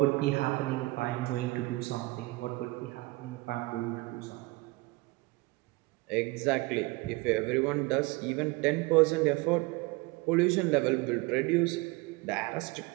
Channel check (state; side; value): quieter; left; 23.1 dB